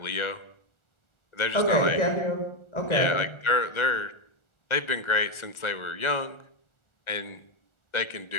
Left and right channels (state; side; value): late; right; 1.4 ms